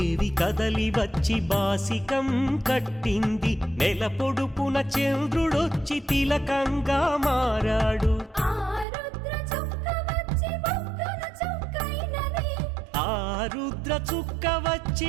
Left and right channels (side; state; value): left; drops out; at 8.8 s